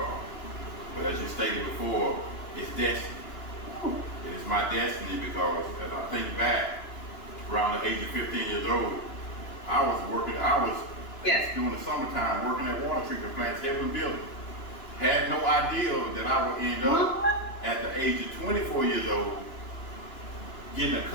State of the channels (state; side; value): late; right; 2.9 ms